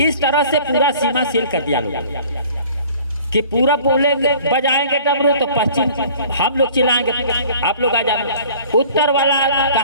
तरह से पूरा सीमा सील कर दिया लोग कि पूरा बोलेंगे बजाएंगे डमरू तो पश्चिम हम लोग चिल्लाएंगे आप लोग आ जाना, उत्तर वाला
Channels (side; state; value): both; inverted; correlation -0.50